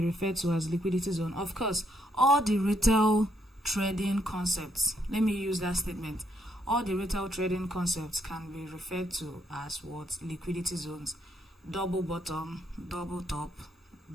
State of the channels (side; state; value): both; normal; correlation 0.74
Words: referred to as liquidity zone? Of course, all the retail trading concepts, let me use that statement, all the retail trading concepts can be referred to as what? Liquidity zones. Double bottom, double top,